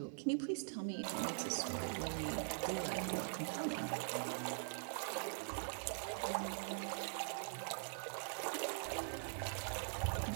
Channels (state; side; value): silent; left; digital silence